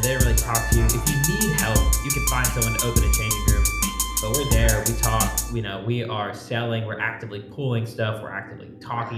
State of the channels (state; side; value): identical; both; correlation 1.00